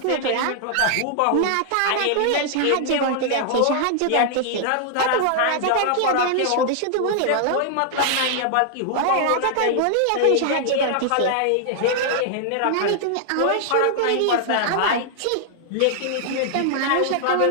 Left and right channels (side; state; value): both; different; correlation -0.01